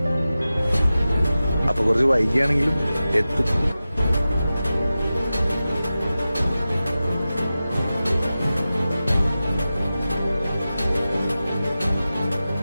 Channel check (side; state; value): both; inverted; correlation -0.94